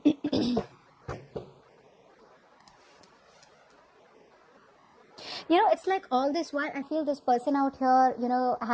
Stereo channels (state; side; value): identical; both; correlation 1.00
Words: It's like all this while I feel this person out here,